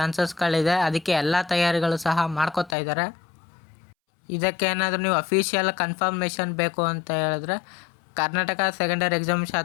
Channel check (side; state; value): right; drops out; at 2.8 s